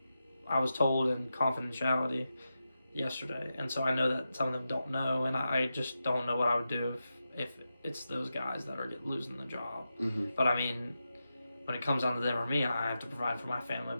I was told in confidentiality yesterday. And so I know that some of them don't know. And I just don't know what I would do if it's those guys that are losing the job. Mm-hmm. But, when it comes down to them or me, I have to provide for my family.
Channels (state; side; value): inverted; both; correlation -0.90